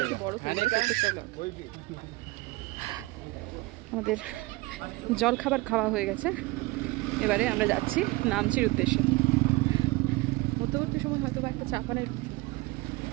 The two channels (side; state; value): left; quieter; 22.3 dB